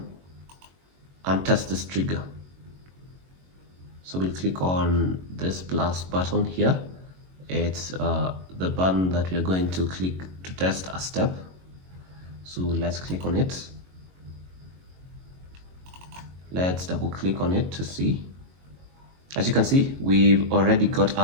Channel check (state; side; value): late; left; 22 ms